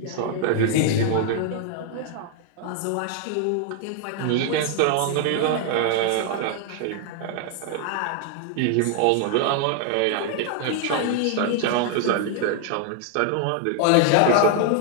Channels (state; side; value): different; both; correlation 0.00